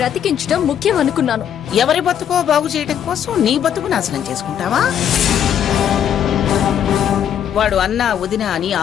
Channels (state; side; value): quieter; right; 9.3 dB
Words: బ్రతికించడం ముఖ్యం అనుకున్నాను. ఎవరి బతుకో బాగు చేయడం కోసం నీ బతుకు నాశనం చేసుకుంటావా? వాడు అన్నా వదినా అని